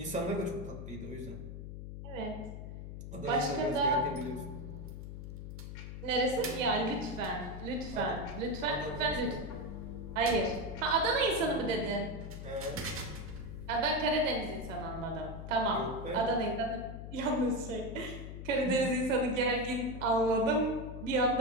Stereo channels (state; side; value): noise; left; hum, 9 dB below the sound